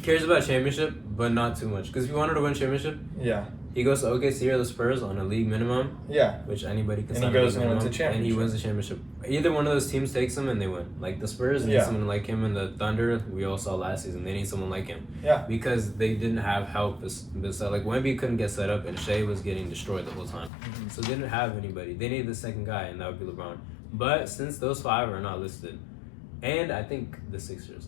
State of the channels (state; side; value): drops out; right; at 20.5 s